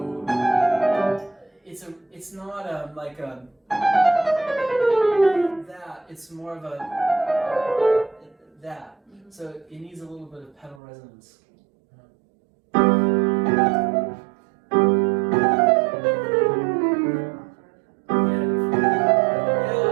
it's not like a that. It's more of a that. So it needs a little bit of pedal resonance.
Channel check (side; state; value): left; drops out; at 10.8 s